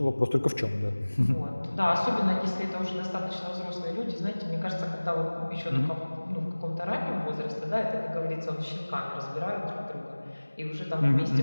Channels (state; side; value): inverted; both; correlation -1.00